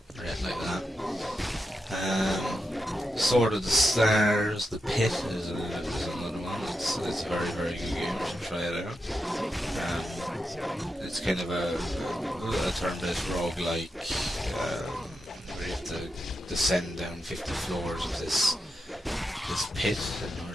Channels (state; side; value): normal; both; correlation 0.86